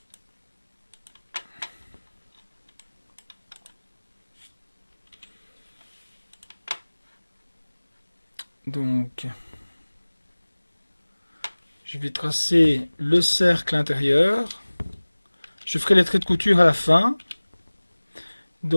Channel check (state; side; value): inverted; both; correlation -1.00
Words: Donc, je vais tracer le cercle intérieur. Je ferai les traits de couture à la fin.